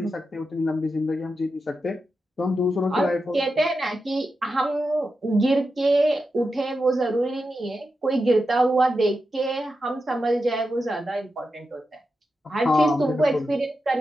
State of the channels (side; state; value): both; normal; correlation 0.89